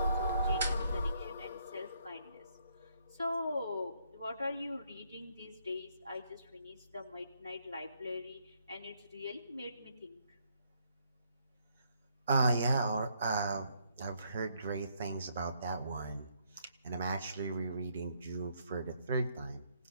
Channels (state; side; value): inverted; both; correlation -0.72